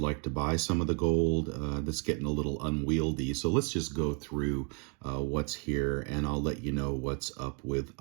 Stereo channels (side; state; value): left; quieter; 36.8 dB